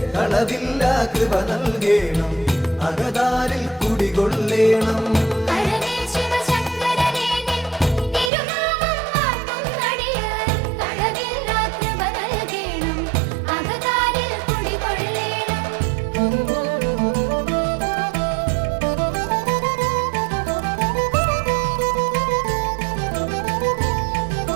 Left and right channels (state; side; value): drops out; left; at 8.3 s